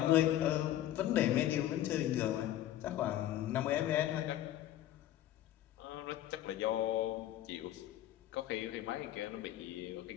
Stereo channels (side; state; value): right; quieter; 13.0 dB